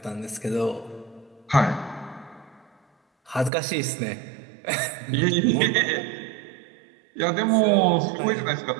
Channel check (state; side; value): drops out; left; at 3.5 s